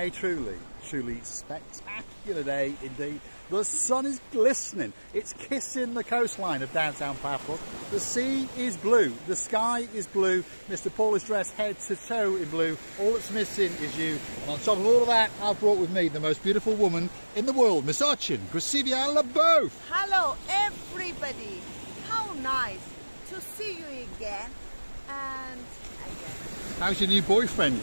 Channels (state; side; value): inverted; both; correlation -1.00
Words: truly spectacular day indeed. The sun is glistening. It's kissing the coastline of downtown Paphos. The sea is blue. The sky is blue. Mr. Paul is dressed head to toe in blue. All that's missing is you. And on top of all of that, I've brought with me the most beautiful woman in the world, Miss Urchin. Gracivia Leboeuf. Hello, everybody. How nice to see you again and again. How's your new boyfriend,